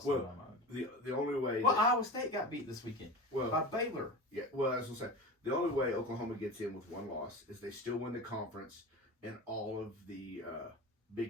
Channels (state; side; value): normal; both; correlation 0.31